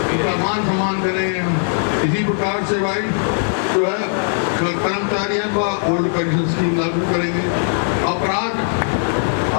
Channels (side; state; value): right; silent; digital silence